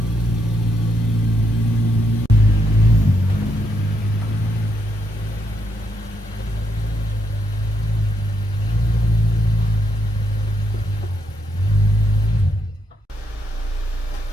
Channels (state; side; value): normal; both; correlation 0.77